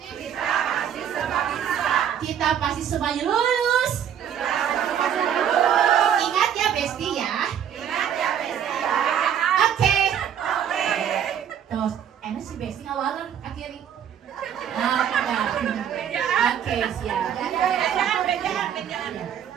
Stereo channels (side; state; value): left; quieter; 9.1 dB